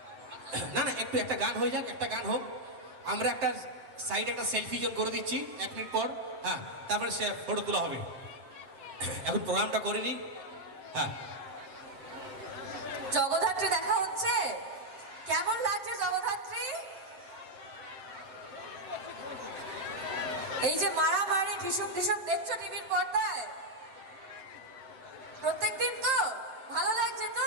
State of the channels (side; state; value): left; late; 7.7 ms